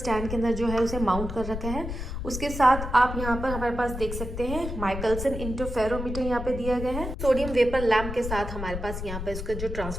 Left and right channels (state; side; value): noise; left; rumble, 6 dB below the sound